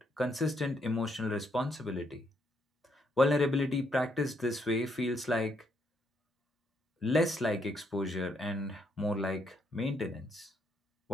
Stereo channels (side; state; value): both; normal; correlation 0.74